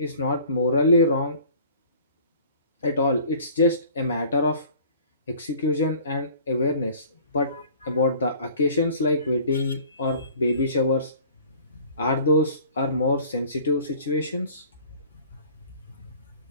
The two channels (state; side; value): inverted; both; correlation -0.48